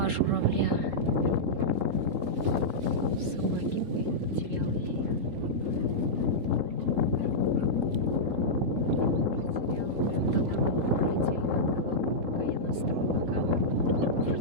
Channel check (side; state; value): left; late; 3.8 ms